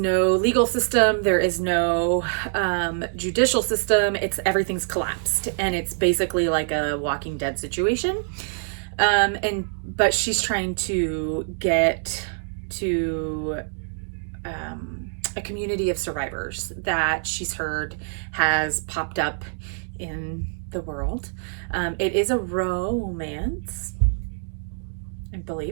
legal system, there is no, judicial system. Everything's collapsed, and it's basically like a Walking Dead situation. But she's trying to get to, a community of survivors that she's heard has popped up in the world. It is a romance, I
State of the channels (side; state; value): left; silent; digital silence